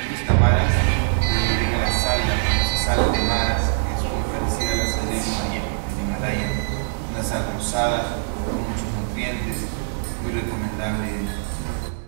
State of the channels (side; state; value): left; silent; digital silence